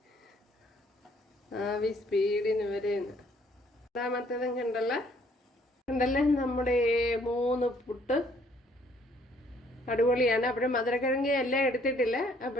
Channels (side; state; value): both; normal; correlation 0.63